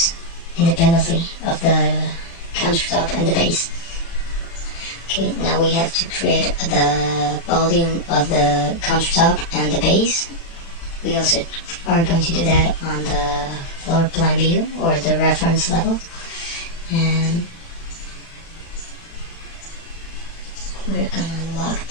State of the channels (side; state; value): right; late; 36 ms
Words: independently of the countertop and the base. Okay, now we have to create the volume of the countertop and the base. We also are going to do that on the floor plan view or the reference level, and we're gonna lock